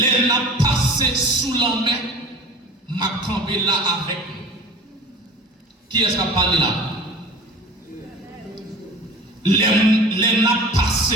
n'a passé sous la main, m'a campé là avec nous. Qui est-ce qui a parlé là? Les n'a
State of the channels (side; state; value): both; normal; correlation 0.38